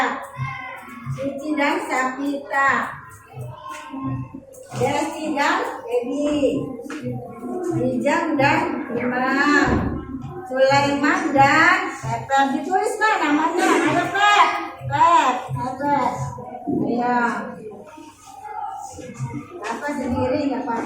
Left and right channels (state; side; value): identical; both; correlation 1.00